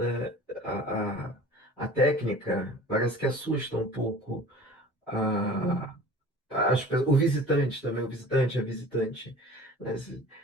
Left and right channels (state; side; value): normal; both; correlation 0.43